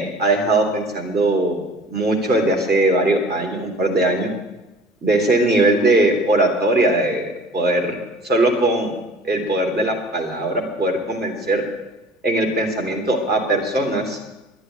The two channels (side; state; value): both; normal; correlation 0.47